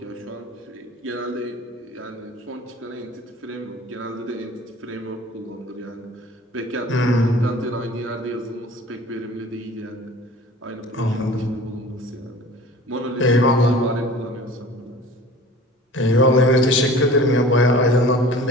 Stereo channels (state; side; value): normal; both; correlation 0.43